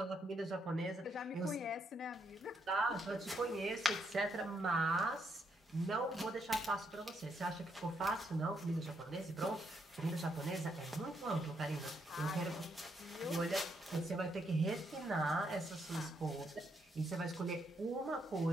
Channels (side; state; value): both; normal; correlation 0.76